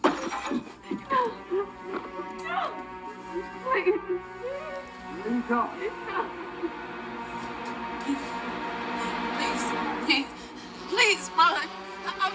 Please. Please go. Please, run. I'm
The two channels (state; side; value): identical; both; correlation 1.00